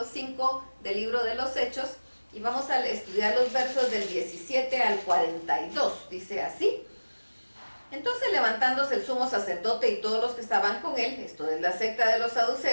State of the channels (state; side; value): inverted; both; correlation -1.00